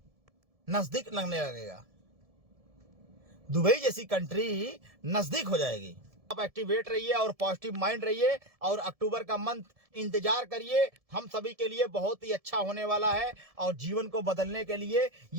नजदीक लगने लगेगा, दुबई जैसी कंट्री नजदीक हो जाएगी। आप एक्टिवेट रहिए और पॉजिटिव माइंड रहिए और अक्टूबर का मंथ इंतजार करिए, हम सभी के लिए बहुत ही अच्छा होने वाला है और जीवन को बदलने के लिए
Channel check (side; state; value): left; late; 1.7 ms